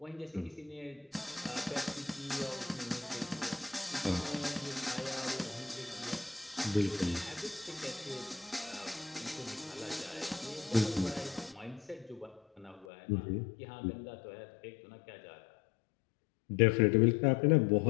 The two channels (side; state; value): right; drops out; at 12.9 s